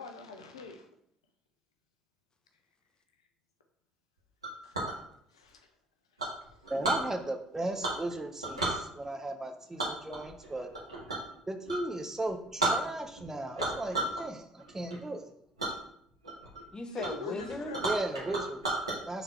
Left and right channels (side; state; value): both; normal; correlation 0.55